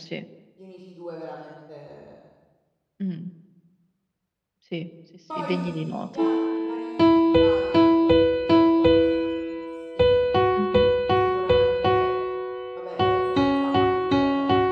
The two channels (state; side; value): identical; both; correlation 1.00